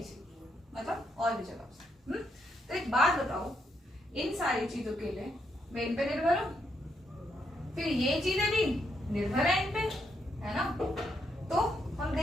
मतलब और भी जगह से। तो एक बात बताओ, इन सारी चीजों के लिए मैं इन पे निर्भर हूं, फिर ये चीजें भी निर्भर है इन पे, है ना? तो हम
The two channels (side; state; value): both; normal; correlation 0.78